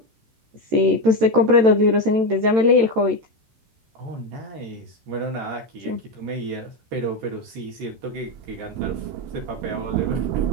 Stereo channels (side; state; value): left; late; 13 ms